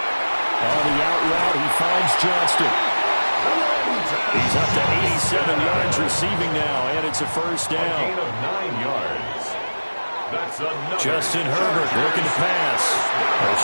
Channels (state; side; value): inverted; both; correlation -1.00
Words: On the out route, he finds Johnston. He's up to 87 yards receiving now, and it's a first down. A gain of 9 yards. That's another. Justin Herbert looking to pass. A